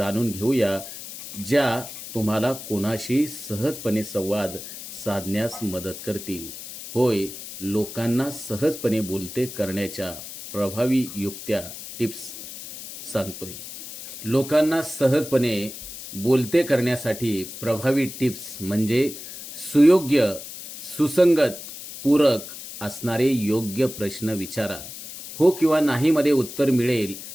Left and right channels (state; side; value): noise; left; hiss, 12 dB below the sound